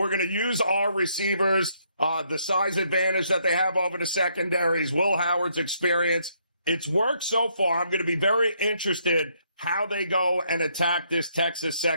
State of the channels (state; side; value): inverted; both; correlation -0.72